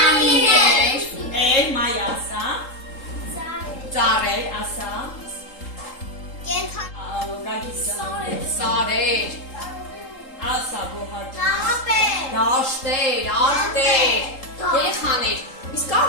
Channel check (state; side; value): late; right; 3.8 ms